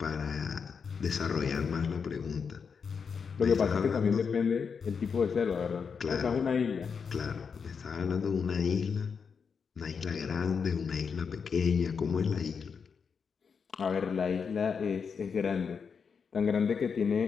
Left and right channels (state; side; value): quieter; right; 6.0 dB